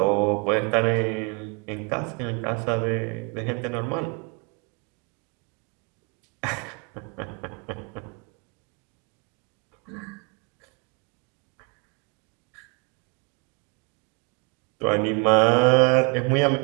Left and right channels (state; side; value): quieter; left; 31.1 dB